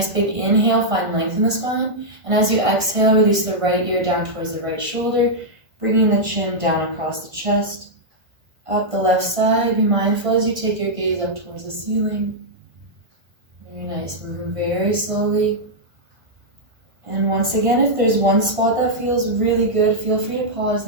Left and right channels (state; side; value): late; left; 1.5 ms